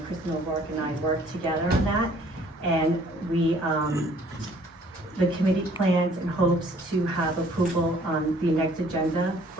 Kristen O'Rourke and I work together on that. And we, the committee plans and hopes to have approval on the next agenda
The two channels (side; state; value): both; normal; correlation 0.58